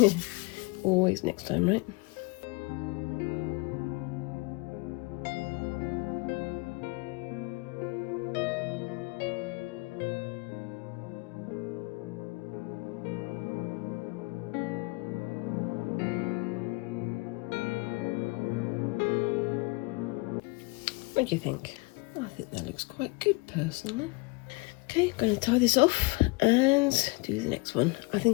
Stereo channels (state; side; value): quieter; right; 26.4 dB